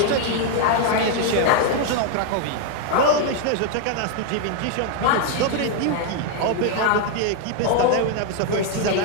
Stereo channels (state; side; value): different; both; correlation 0.00